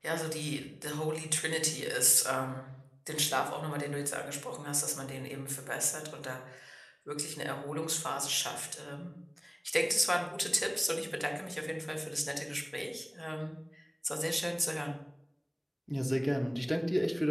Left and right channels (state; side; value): identical; both; correlation 1.00